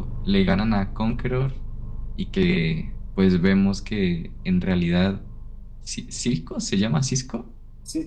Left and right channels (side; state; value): both; identical; correlation 1.00